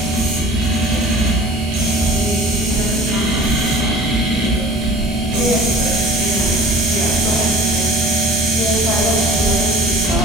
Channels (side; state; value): both; normal; correlation 0.44